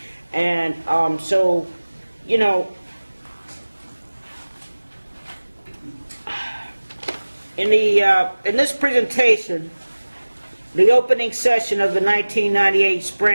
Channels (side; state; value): both; inverted; correlation -1.00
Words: And so, in this presentation, the opening session of the 1998